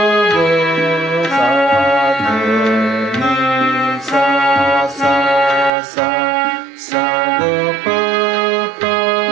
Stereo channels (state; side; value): drops out; left; at 5.7 s